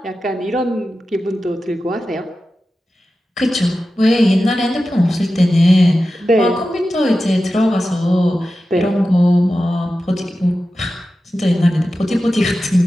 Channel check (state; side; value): normal; both; correlation 0.93